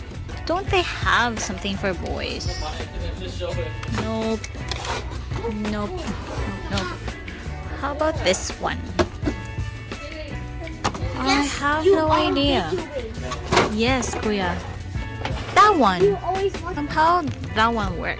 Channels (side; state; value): both; identical; correlation 1.00